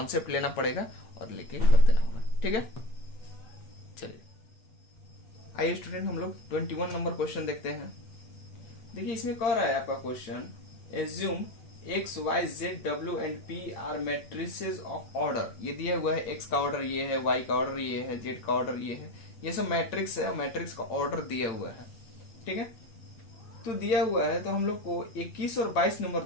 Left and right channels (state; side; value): late; right; 8.8 ms